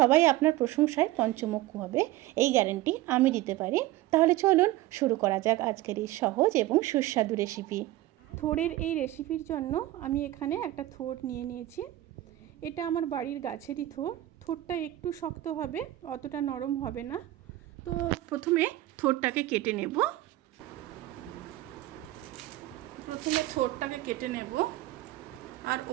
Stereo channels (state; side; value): quieter; left; 16.1 dB